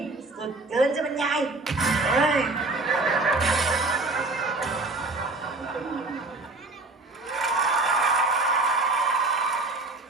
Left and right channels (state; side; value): quieter; left; 3.1 dB